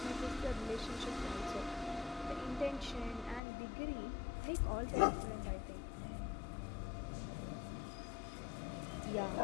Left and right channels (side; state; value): right; drops out; at 3.4 s